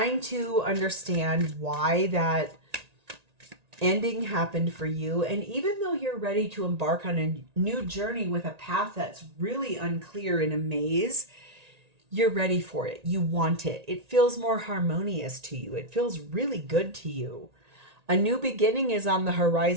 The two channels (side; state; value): left; late; 1.9 ms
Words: to understand why that ending happened for you. And even though you're ready to embark on a new journey with a path that's really unclear in a maze, you're ready for it. You want it. It feels more harmonious to you. It feels really good to you. A new beginning is on the